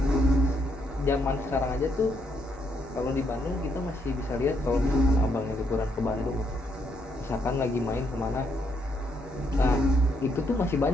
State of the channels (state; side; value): normal; both; correlation 0.75